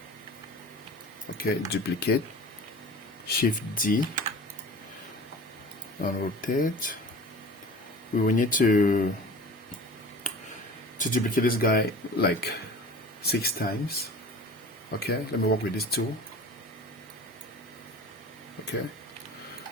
Okay, duplicate. Shift D and rotate. We will need to duplicate this guy like 6 times. Okay, let me work with this tool. Okay,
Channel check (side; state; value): both; normal; correlation 0.39